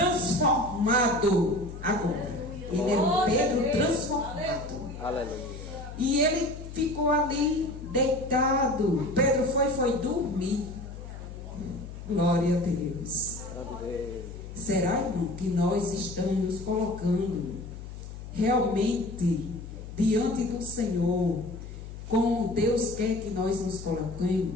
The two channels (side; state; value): left; noise; hum, 11 dB below the sound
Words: agora. Ele era um Pedro transformado. Aleluia. E ele ficou ali deitado. Pedro foi dormir. Glória a Deus. Grande Deus. Será, irmão, que nós estamos nos colocando realmente diante do Senhor, como Deus quer que nós nos